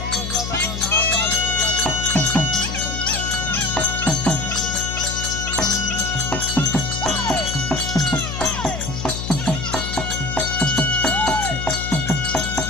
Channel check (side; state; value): left; noise; hum, 6 dB below the sound